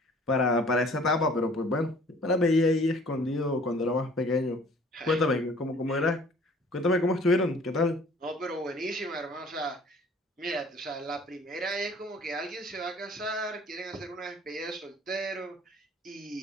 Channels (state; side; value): normal; both; correlation 0.53